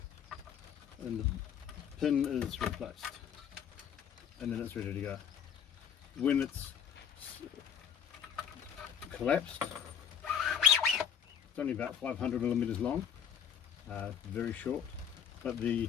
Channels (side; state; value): right; quieter; 8.3 dB